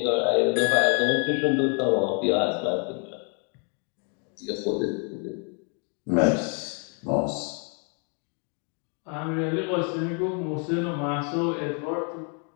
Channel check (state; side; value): quieter; right; 38.5 dB